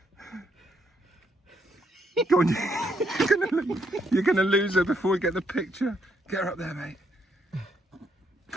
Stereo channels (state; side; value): normal; both; correlation 0.74